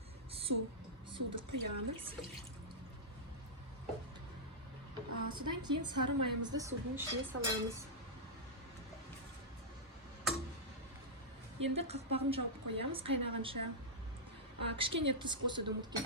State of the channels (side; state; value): both; normal; correlation -0.09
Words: Суды құямыз. Содан кейін сары майымызды судың ішіне саламыз. Енді қақпағын жауып қоямыз қайнағанша. Кішкене тұз қосуды ұмытып